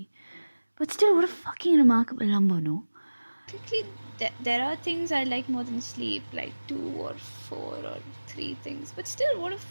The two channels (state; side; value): inverted; both; correlation -1.00